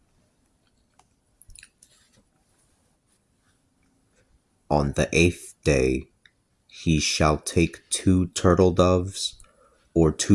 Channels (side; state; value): both; identical; correlation 1.00